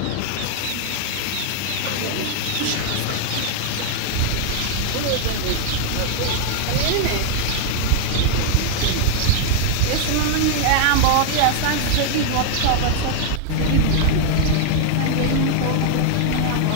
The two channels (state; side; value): different; both; correlation 0.00